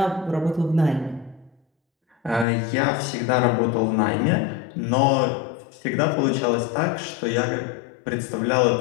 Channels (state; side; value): drops out; right; at 2.5 s